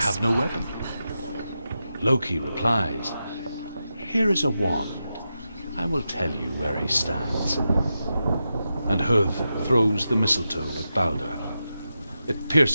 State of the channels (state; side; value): inverted; both; correlation -0.89